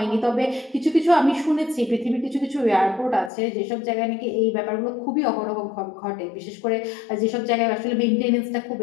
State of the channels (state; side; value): drops out; right; at 3.3 s